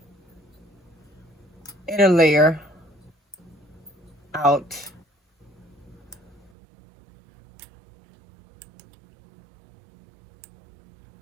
inner layer out.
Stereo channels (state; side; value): drops out; left; at 6.5 s